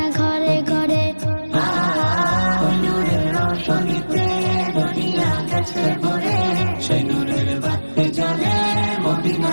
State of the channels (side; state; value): both; inverted; correlation -1.00